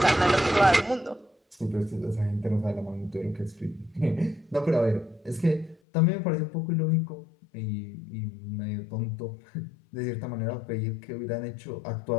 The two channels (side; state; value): right; drops out; at 5.8 s